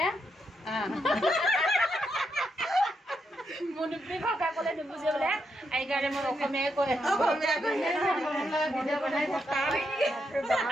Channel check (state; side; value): normal; both; correlation 0.81